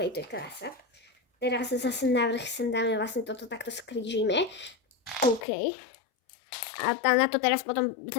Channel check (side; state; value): right; drops out; at 5.5 s